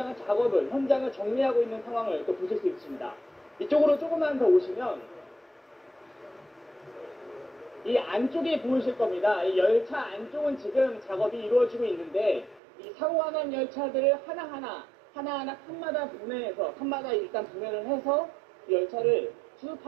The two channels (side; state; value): left; drops out; at 12.6 s